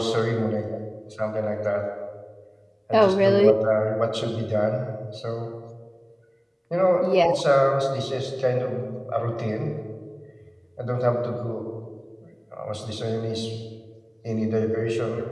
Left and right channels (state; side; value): identical; both; correlation 1.00